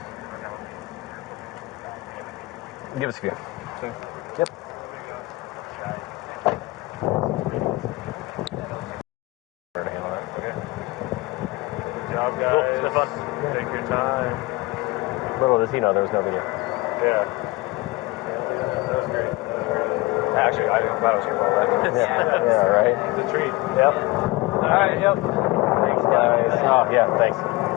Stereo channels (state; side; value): quieter; right; 21.5 dB